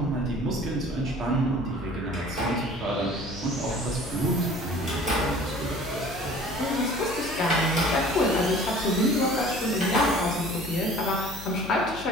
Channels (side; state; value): left; noise; hum, 14 dB below the sound